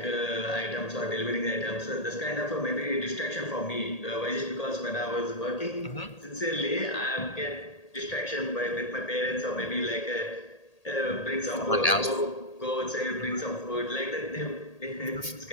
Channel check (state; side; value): late; right; 1.8 ms